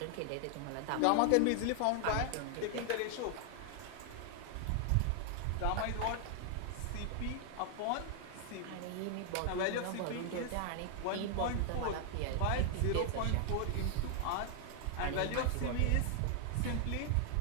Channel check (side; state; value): both; different; correlation 0.00